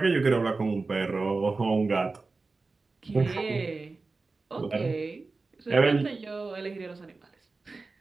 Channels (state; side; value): quieter; left; 3.8 dB